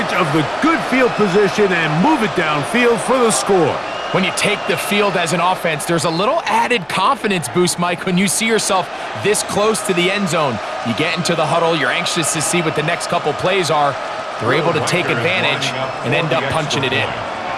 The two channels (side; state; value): both; identical; correlation 1.00